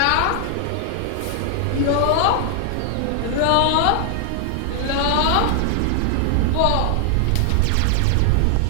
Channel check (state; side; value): different; both; correlation 0.00